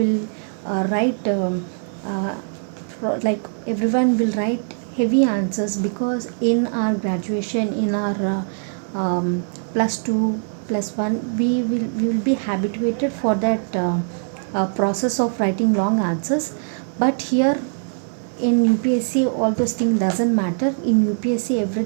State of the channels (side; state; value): left; silent; 64 dB below the other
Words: write like everyone will write heavy answers, because in our graduation, in our plus 2 plus 1, we will be habituated for that process of writing long answers. But here in UPSC all those things doesn't matter. In UPSC